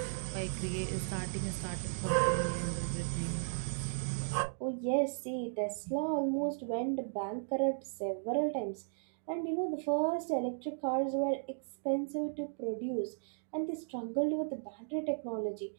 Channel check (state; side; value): silent; left; digital silence